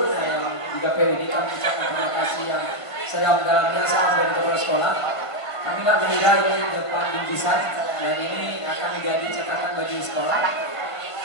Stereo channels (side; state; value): right; late; 1.5 ms